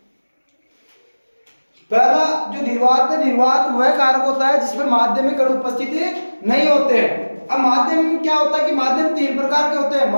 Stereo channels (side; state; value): both; inverted; correlation -1.00